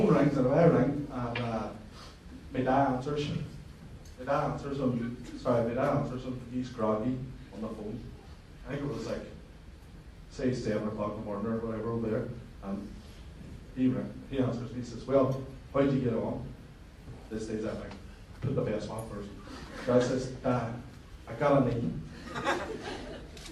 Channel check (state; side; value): identical; both; correlation 1.00